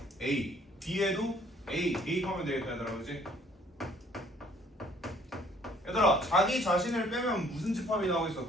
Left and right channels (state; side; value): normal; both; correlation 0.59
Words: A, B에도 A 대입하면 되겠다, 얘들아, 그렇지? 얘들아 자기 자신을 빼면 무슨 집합이 나오겠어?